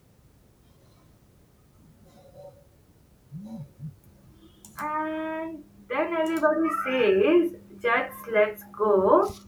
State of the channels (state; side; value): identical; both; correlation 1.00